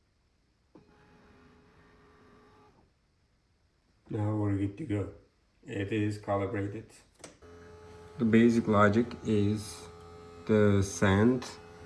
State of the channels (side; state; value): both; identical; correlation 1.00